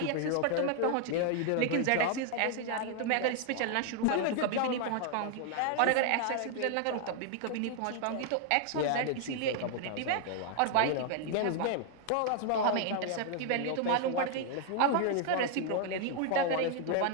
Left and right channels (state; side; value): different; both; correlation 0.00